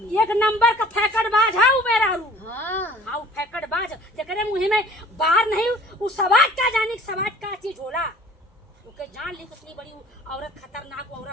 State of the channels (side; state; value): both; normal; correlation 0.50